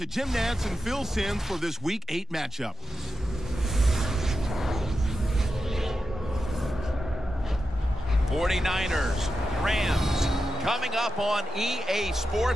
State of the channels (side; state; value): both; normal; correlation 0.89